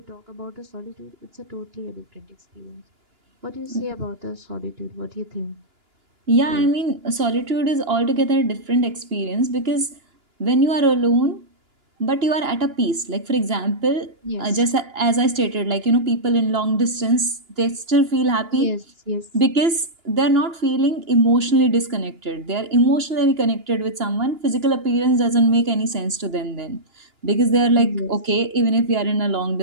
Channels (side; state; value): left; late; 2.9 ms